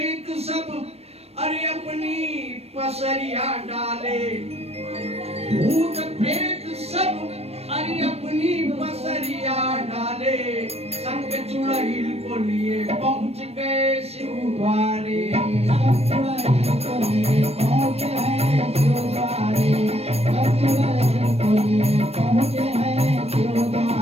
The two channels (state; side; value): late; left; 0.30 ms